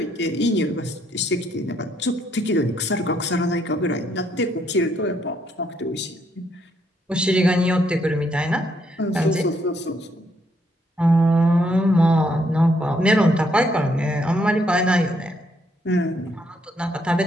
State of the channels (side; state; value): both; normal; correlation 0.73